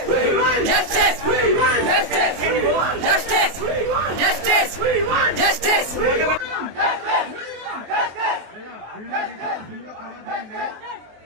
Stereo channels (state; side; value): late; left; 23 ms